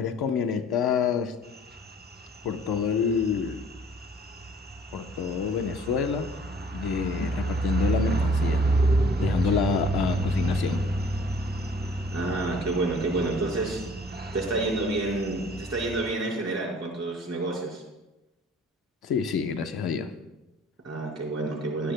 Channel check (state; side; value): normal; both; correlation 0.53